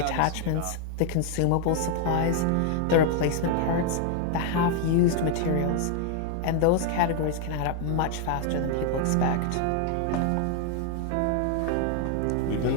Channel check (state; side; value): different; both; correlation 0.00